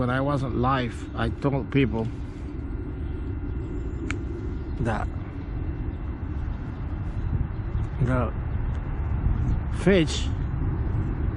I wasn't live, I told people that the fish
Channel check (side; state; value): both; identical; correlation 1.00